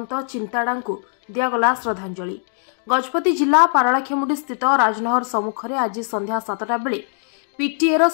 चिंताड़ा को दिगला श्रद्धांजलि। गजपति जिला पारलाखेमुंडी स्थित राजनहर सम्मुखें आज संध्या 7टा बेले पीटीएर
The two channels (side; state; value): right; silent; digital silence